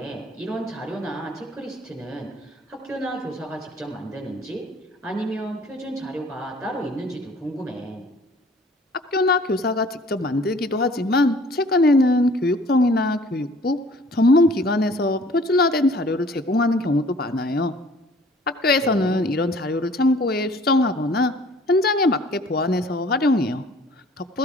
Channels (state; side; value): normal; both; correlation 0.53